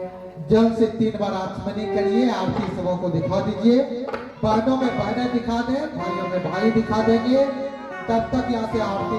जल से 3 बार आचमनी करिए, आरती सबों को दिखा दीजिए। बहनों में बहनें दिखा दें, भाइयों में भाई दिखा देंगे। तब तक यहाँ से आरती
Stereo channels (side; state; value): both; identical; correlation 1.00